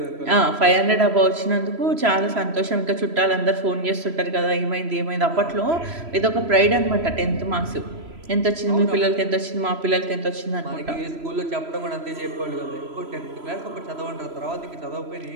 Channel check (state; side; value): late; left; 3.0 ms